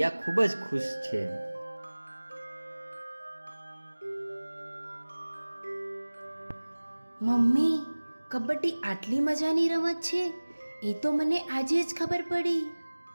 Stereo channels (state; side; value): inverted; both; correlation -1.00